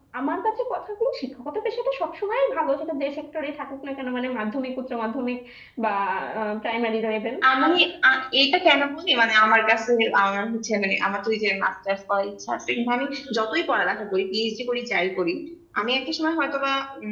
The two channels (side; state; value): both; identical; correlation 1.00